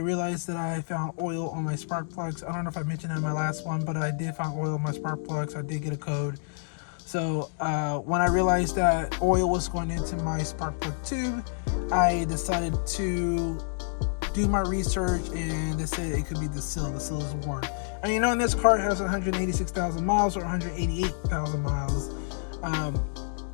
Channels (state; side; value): silent; right; digital silence